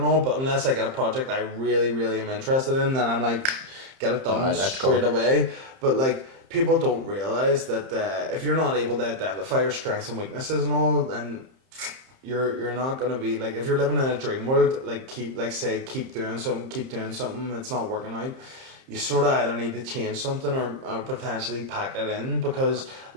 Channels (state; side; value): late; left; 30 ms